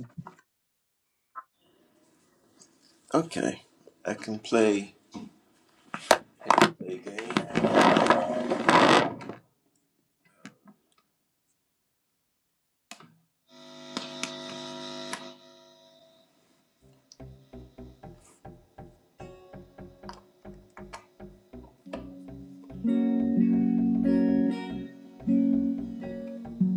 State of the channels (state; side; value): identical; both; correlation 1.00